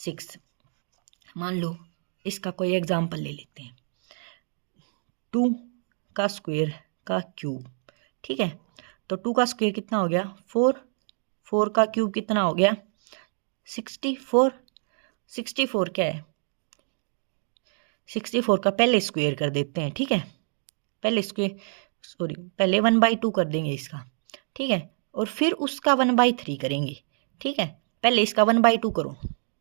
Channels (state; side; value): silent; left; digital silence